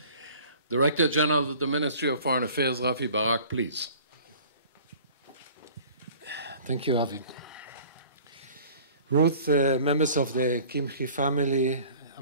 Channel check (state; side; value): inverted; both; correlation -0.48